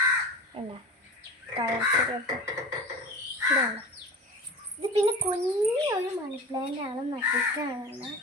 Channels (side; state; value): both; normal; correlation 0.33